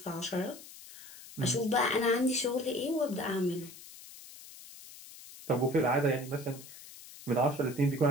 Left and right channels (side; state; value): left; noise; hiss, 17 dB below the sound